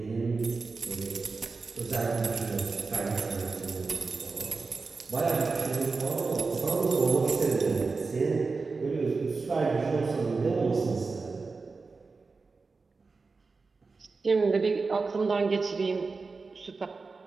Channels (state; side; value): quieter; left; 4.2 dB